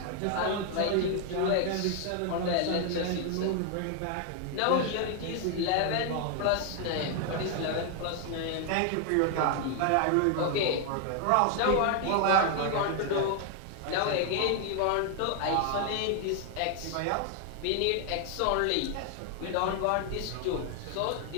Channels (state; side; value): different; both; correlation 0.00